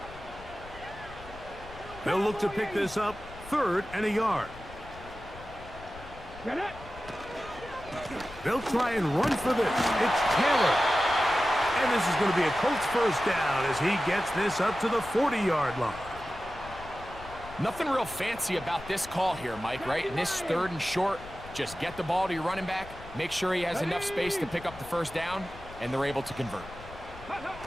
They'll look to pick this up 3rd and a yard. They'll try and run for this. It's Taylor. And this is going to be a Colts first down as he gets this up to the 40-yard line. Nothing real fancy about this call here, Mike, right? In this 3rd and short, just get the ball to your running back, make sure he has enough space to pick up the first down, and they're able to convert.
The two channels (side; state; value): left; noise; rumble, 17 dB below the sound